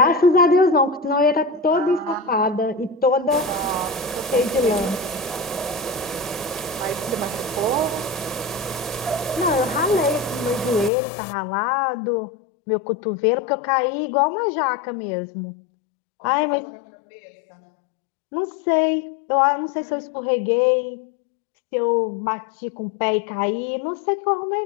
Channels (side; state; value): right; drops out; at 10.9 s